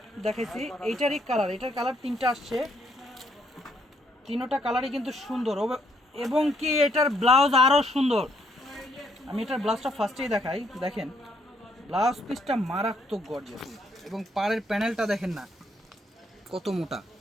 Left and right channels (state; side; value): normal; both; correlation 0.71